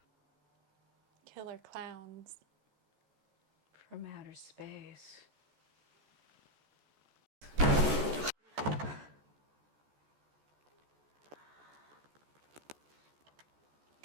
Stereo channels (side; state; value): left; late; 14 ms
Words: Killer Klowns. From outer space.